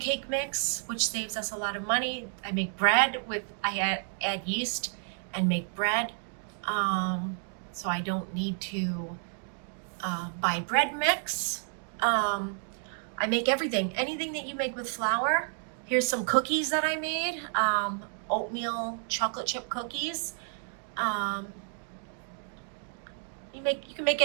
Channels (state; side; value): silent; left; 56 dB below the other